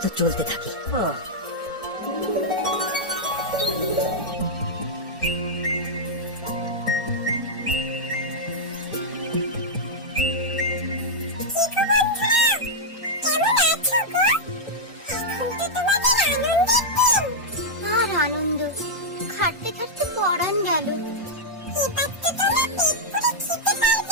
চলতে থাকি। ও, আর আনন্দ, খাটতে খাটতে পরান গেল। এবার তো তোমরা পেট পুরে খেতে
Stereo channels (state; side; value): normal; both; correlation -0.05